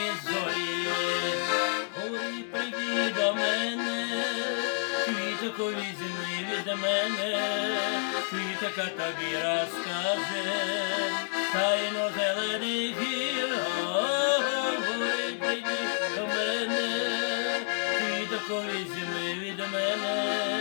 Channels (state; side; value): silent; right; digital silence